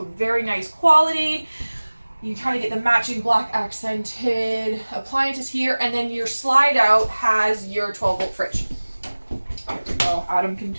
very nice quality. You kind of get the matching black accented appliances here, and then your slide out has your 12-volt fridge. There we go. Adam can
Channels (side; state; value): both; inverted; correlation -1.00